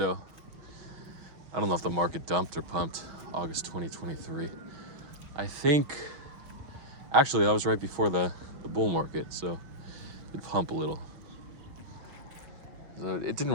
I don't know if the market dumped or pumped August 2023. I think, actually, that was right before the bull market, so it pumped a little. So it didn't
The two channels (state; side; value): late; left; 5.9 ms